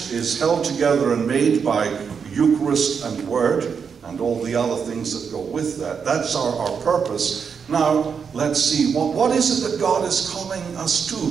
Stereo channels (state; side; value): quieter; left; 6.4 dB